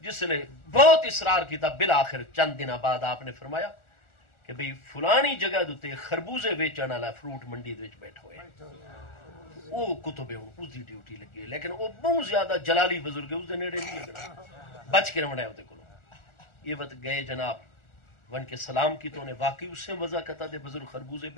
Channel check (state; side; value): late; right; 1.4 ms